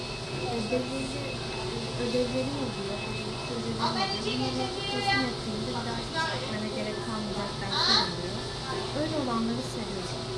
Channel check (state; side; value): identical; both; correlation 1.00